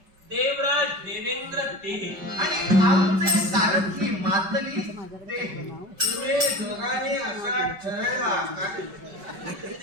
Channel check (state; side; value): late; left; 5.1 ms